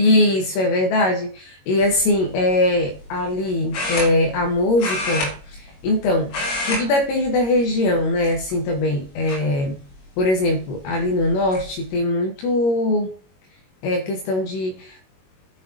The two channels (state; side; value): late; right; 21 ms